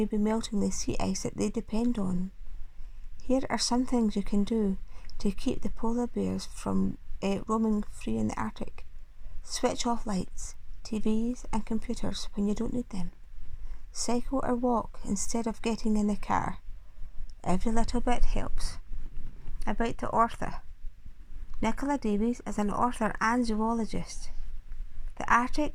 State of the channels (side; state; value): both; identical; correlation 1.00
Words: be melting the sea ice that they depend on. Here are some things you can do to keep the polar bears from roaming free in the Arctic. Switch off lights, TVs and computers when you don't need them. Cycle or walk instead of getting in the car. Every little bit helps. About the author. Nicola Davies is an author and zoologist. The Arctic